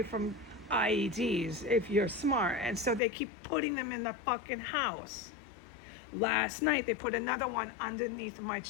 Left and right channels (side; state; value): right; drops out; at 3.0 s